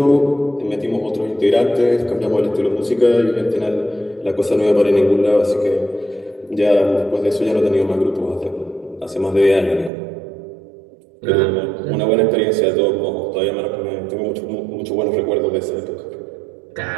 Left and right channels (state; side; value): drops out; left; at 9.9 s